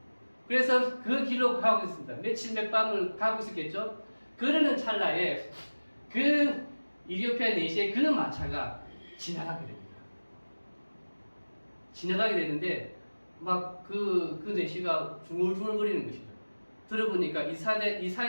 그래서 그 길로 가고 있습니다. 며칠 몇 밤을 가고 있었겠죠. 그러는 찰나에 그 이디오피아 내시의 그 마차가 지나가게 됩니다. 지나가게 되는데 막 그 내시가 중얼중얼거리는 것이죠. 들어보니까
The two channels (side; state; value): both; inverted; correlation -1.00